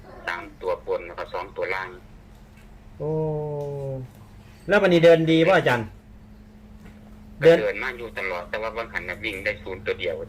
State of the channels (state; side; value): identical; both; correlation 1.00